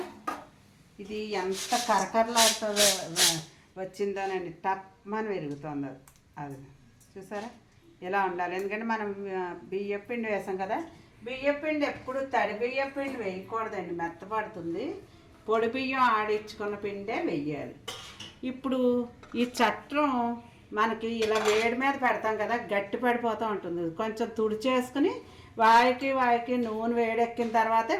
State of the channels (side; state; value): both; identical; correlation 1.00